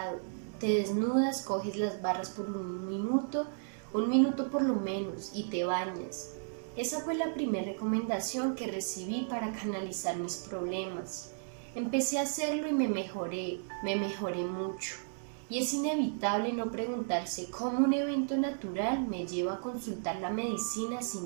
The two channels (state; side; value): silent; left; digital silence